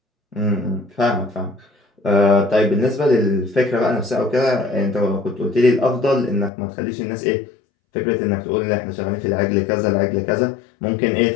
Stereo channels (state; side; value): drops out; right; at 6.5 s